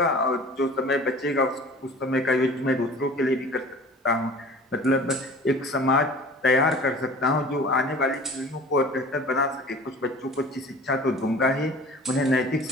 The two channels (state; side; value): normal; both; correlation 0.43